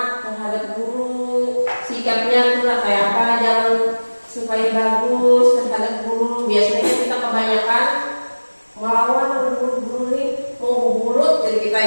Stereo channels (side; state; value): both; inverted; correlation -1.00